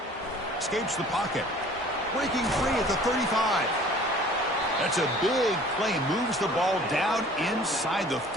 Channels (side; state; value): both; normal; correlation 0.49